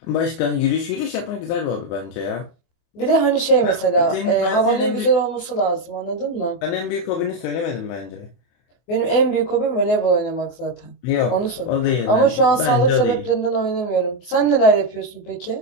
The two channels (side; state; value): right; late; 24 ms